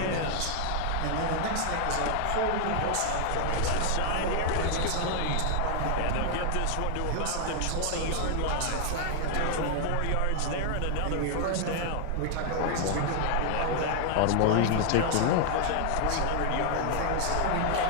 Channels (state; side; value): different; both; correlation 0.00